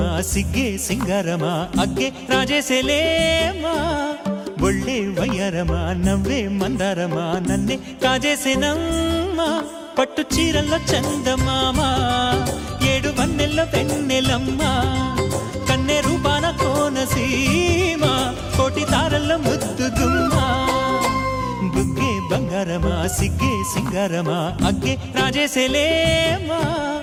సిగ్గే సింగారమా అగ్గే రాజేసేలేమా ఒళ్ళే వయ్యారమా నవ్వే మందారమా నన్నే కాజేసేనమ్మా పట్టు చీరల్లో చందమామా ఏడు వన్నెల్లో పెన్నెలమ్మా కన్నె రూపాన కోనసీమ కోటి తారల్లో ముద్దుగుమ్మా బుగ్గే బంగారమా సిగ్గే సింగారమా అగ్గే రాజేసేలేమా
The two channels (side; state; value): both; identical; correlation 1.00